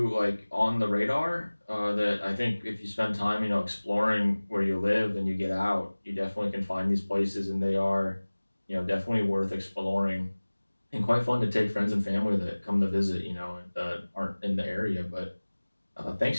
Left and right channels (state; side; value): inverted; both; correlation -1.00